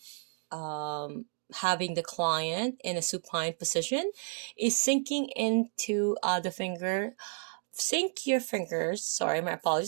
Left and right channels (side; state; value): left; silent; 57 dB below the other